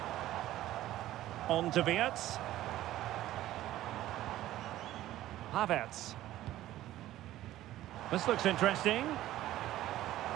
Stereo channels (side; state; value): left; quieter; 14.4 dB